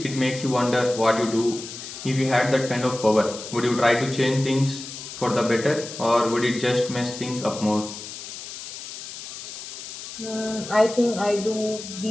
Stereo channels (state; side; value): noise; left; hiss, 11 dB below the sound